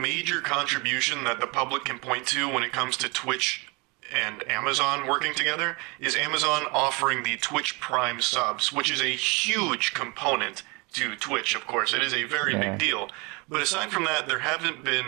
contribution that the public can point to when it comes to Twitch and Amazon working together is Amazon offering the Twitch Prime subs, which is a huge component to Twitch, of course. It is a very big deal. But aside from that, there haven't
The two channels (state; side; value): quieter; left; 28.3 dB